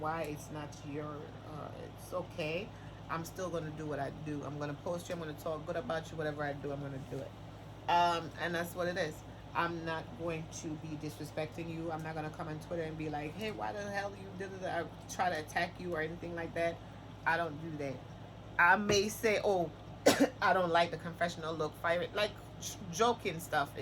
it's not your, it's okay. I'm still going to do what I do. I'm going to post you. I'm going to talk good about you. Whatever I do, I'm going to do it. And that's what it is. I'm not going to be disrespecting you. I'm not going to come on Twitter and be like, hey, why the hell you did it? I try to attack you or anything like that. I don't do that. I may say, oh, I don't like the confessional look, fire it, like joking stuff.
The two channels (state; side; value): identical; both; correlation 1.00